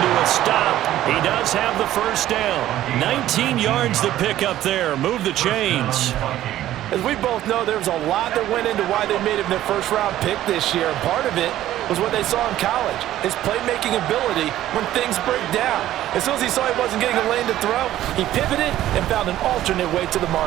a stop. He does have the first down. 19 yards to pick up there. Move the chains. As we both know, there was a lot that went into why they made him their first-round pick this year. And part of it was what they saw in college, his playmaking ability when things break down. As soon as he saw he wasn't getting a lane to throw, he pivoted and found an alternate way to the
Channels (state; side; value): quieter; left; 13.5 dB